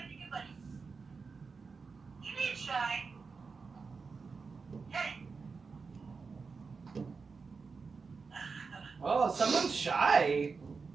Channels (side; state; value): left; quieter; 4.8 dB